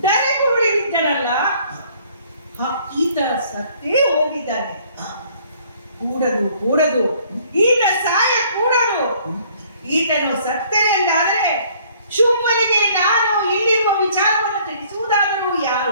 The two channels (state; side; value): inverted; both; correlation -0.59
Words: ಧರೆಗುರುಳಿ ಬಿದ್ದನಲ್ಲ, ಈತ ಸತ್ತೇ ಹೋಗಿದ್ದಾನೆ. ಕೂಡದು ಈತ ಸಾಯ ಕೂಡದು. ಈತನು ಸತ್ತನೆ ಎಂದಾದರೆ ಶುಂಭನಿಗೆ ನಾನು ಇಲ್ಲಿರುವ ವಿಚಾರವನ್ನು ತಿಳಿಸುವುದಾದರೂ